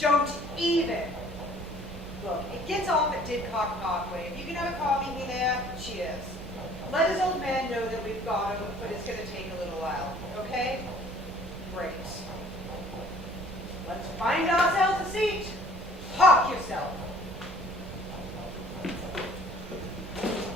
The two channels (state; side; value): normal; both; correlation 0.54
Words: even. Look, it gets off at Didcot Parkway. If you can have a car meet me there, cheers. Let his old man know that we've got him, but it's going to take a little while, okay? Great. Let's find ourselves a seat. Park yourself.